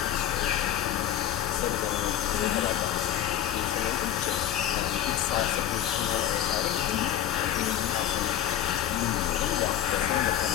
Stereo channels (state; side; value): quieter; right; 11.1 dB